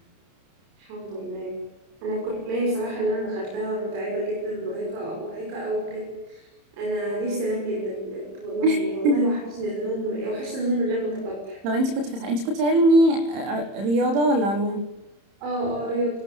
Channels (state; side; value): late; left; 31 ms